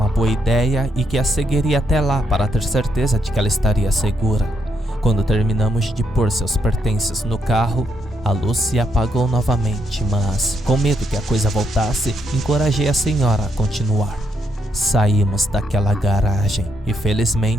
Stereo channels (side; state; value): both; normal; correlation 0.77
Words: boa ideia e que a seguiria até lá para ter certeza de que ela estaria segura. Quando terminamos de pôr seus pertences no carro, a luz se apagou novamente, mas, com medo que a coisa voltasse, encorajei a senhora a continuar. Saímos daquela garagem e,